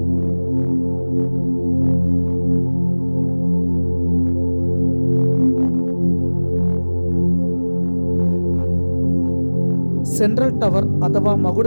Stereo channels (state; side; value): inverted; both; correlation -1.00